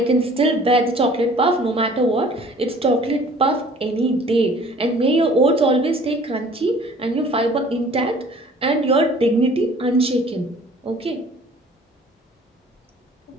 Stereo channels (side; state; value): both; normal; correlation 0.51